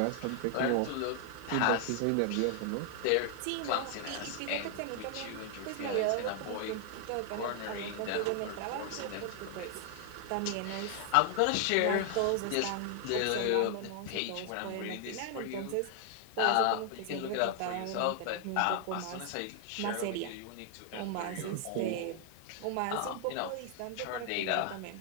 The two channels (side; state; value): both; different; correlation 0.00